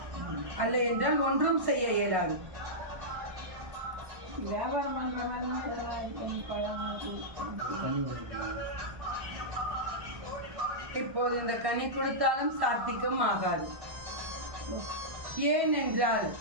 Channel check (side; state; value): left; late; 1.1 ms